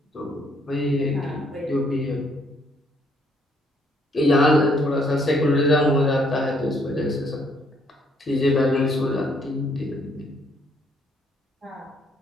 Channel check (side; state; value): both; normal; correlation 0.68